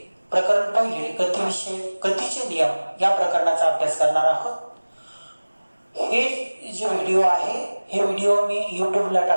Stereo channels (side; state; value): both; inverted; correlation -1.00